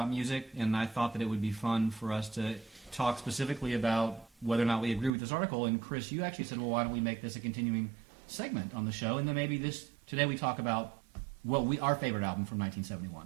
music, and I thought that it would be fun for us to talk specifically about whether or not we agree with this article. And Chris, you actually said, well, why don't we make this a continuing segment on the show, and then maybe today we talk about what our favorite album from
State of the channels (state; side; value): drops out; left; at 5.2 s